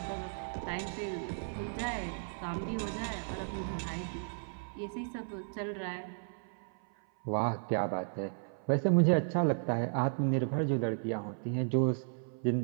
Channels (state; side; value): silent; left; 55 dB below the other